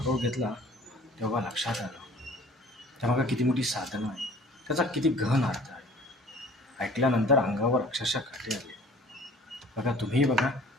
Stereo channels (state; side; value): normal; both; correlation 0.50